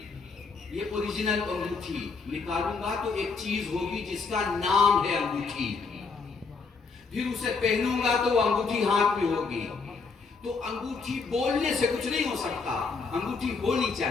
یہ اوریجنل انگوٹھی. نکالوں گا تو ایک چیز ہوگی جس کا نام ہے انگوٹھی. پھر اسے پہنوں گا تو وہ انگوٹھی ہاتھ میں ہوگی. تو انگوٹھی بولنے سے کچھ نہیں ہو سکتا, انگوٹھی ہونی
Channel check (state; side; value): quieter; right; 4.6 dB